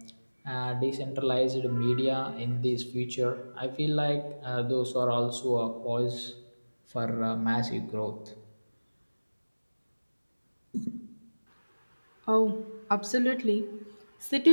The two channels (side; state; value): both; inverted; correlation -1.00